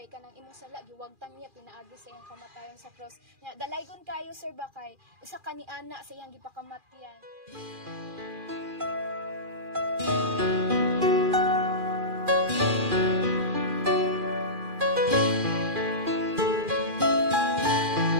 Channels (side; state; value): left; late; 2.4 ms